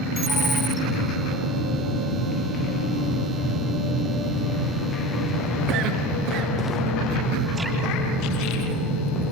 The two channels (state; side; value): normal; both; correlation 0.31